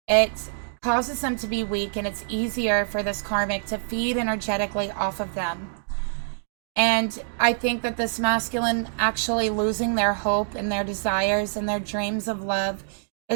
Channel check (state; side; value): silent; left; digital silence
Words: It causes them to be weak, and it's easier for this karmic to feed energetically off of them. And I think that this masculine actually losing their hope and their desires and their dreams of love